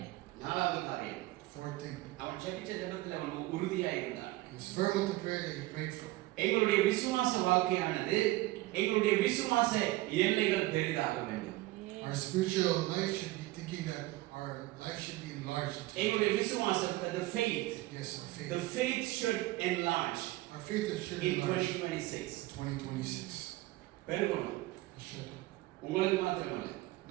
நாலாவது காரியம், Fourth thing. அவன் ஜெபிச்ச ஜெபத்தில் அவன் உறுதியா இருந்தான். He was firm with the prayer that he prayed for. எங்களுடைய விசுவாச வாழ்க்கையானது எங்களுடைய விசுவாச எல்லைகள் பெரிதாக வேண்டும். Our spiritual life should be thinking that our life should be enlarged. எங்களுடைய விசுவாசம், the faith, Yes, our faith. the faith should enlarge Our faith should in enlarge 2026. 2026. பெருகணும். It should. உங்களுக்கு மாத்திரமல்ல,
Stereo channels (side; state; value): left; quieter; 18.8 dB